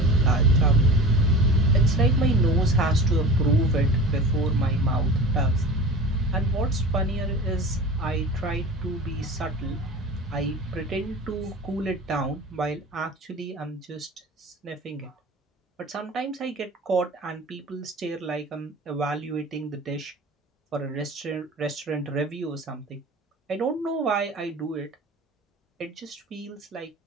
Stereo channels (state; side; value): normal; both; correlation 0.35